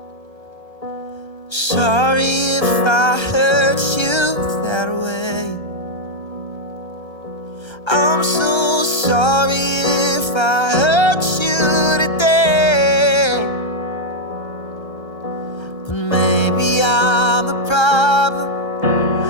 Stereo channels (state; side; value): late; right; 1.3 ms